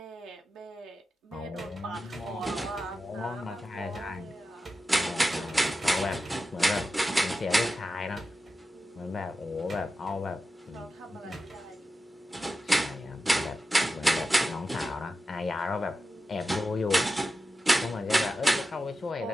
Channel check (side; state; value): both; normal; correlation 0.91